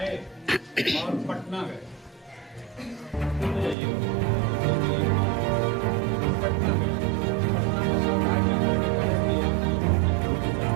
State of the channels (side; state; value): left; drops out; at 3.8 s